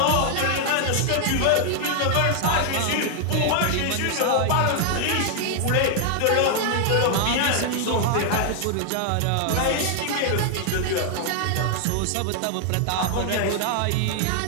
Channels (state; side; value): different; both; correlation 0.00